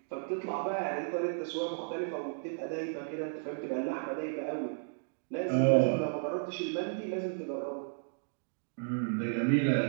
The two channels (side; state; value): left; silent; digital silence